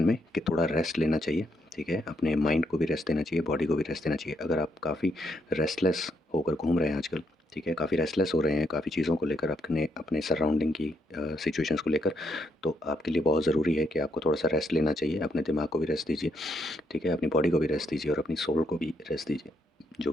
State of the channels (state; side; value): normal; both; correlation 0.76